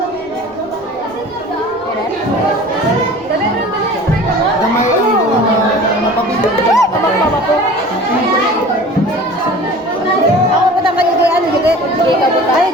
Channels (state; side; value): normal; both; correlation 0.42